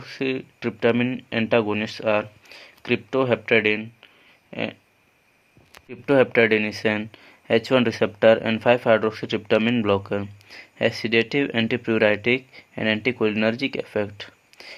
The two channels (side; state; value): both; identical; correlation 1.00